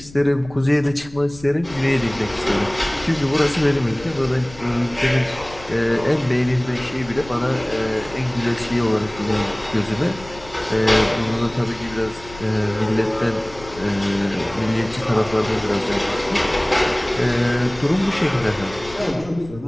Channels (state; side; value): noise; left; rumble, 19 dB below the sound